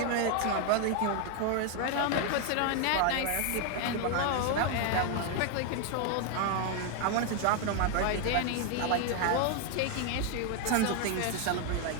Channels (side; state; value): both; different; correlation 0.00